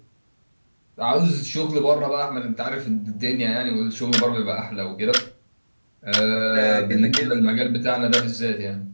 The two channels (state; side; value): inverted; both; correlation -1.00